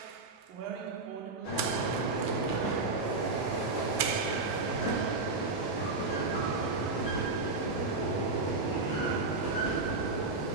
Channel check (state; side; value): quieter; left; 3.5 dB